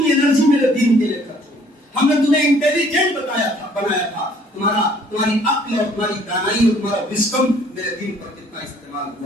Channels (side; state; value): both; normal; correlation 0.59